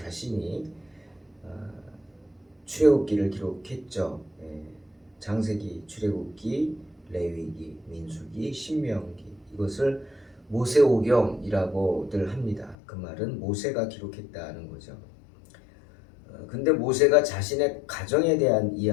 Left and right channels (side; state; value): right; drops out; at 12.8 s